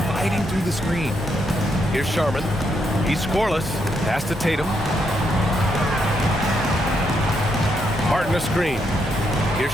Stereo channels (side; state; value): both; normal; correlation 0.78